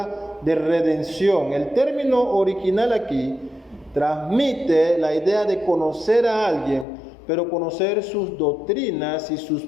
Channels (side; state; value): right; drops out; at 6.9 s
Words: de redención. El término original aquí transmite la idea de conocer a alguien, pero conocer sus doctrinas y sus